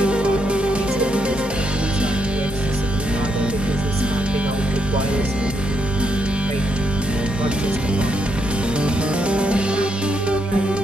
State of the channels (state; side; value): normal; both; correlation 0.78